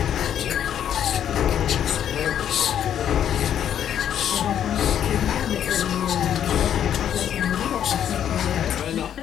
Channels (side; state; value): right; quieter; 9.7 dB